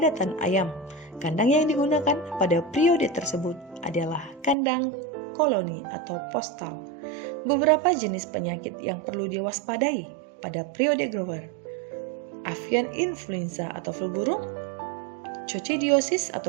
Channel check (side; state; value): left; drops out; at 4.5 s